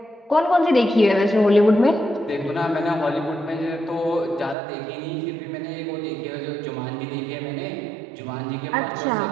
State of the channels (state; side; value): drops out; left; at 4.5 s